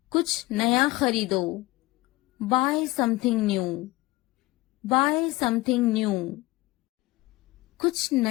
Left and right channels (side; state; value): right; quieter; 20.4 dB